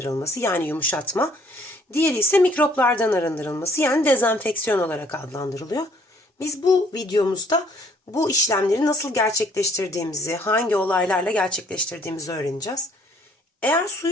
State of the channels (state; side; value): normal; both; correlation 0.62